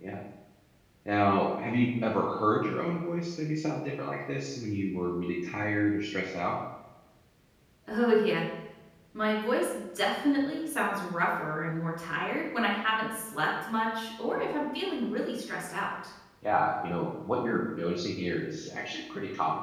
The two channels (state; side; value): identical; both; correlation 1.00